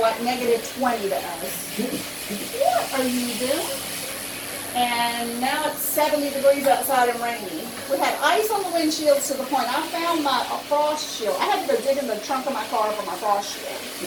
-20 to us. What are you doing? And now it's 70 degrees outside and rainy. We had ice on the windshields to the point I found my frost shield. I had to go dig in the trunk of my car for my frost shield.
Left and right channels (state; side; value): identical; both; correlation 1.00